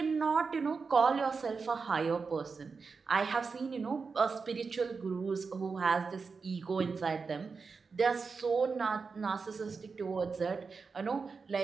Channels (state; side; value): quieter; left; 4.9 dB